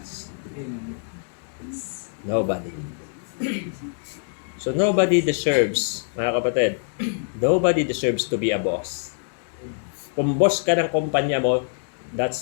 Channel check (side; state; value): right; silent; digital silence